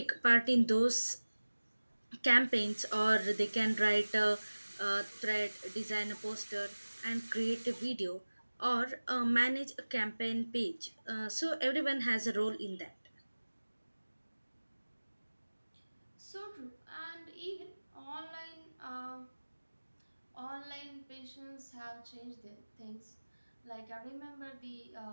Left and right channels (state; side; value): inverted; both; correlation -1.00